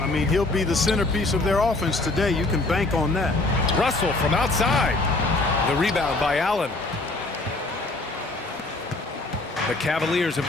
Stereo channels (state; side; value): quieter; right; 3.0 dB